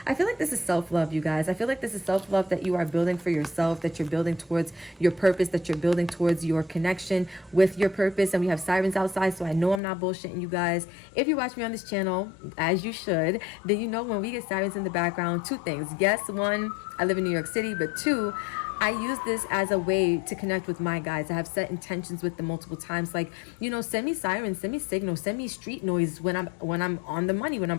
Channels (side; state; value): right; drops out; at 9.8 s